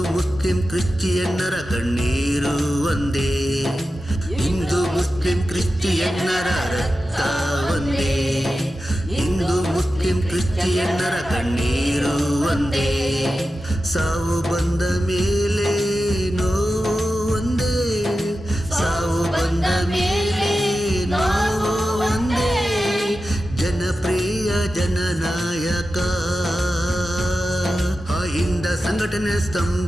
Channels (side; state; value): both; normal; correlation 0.93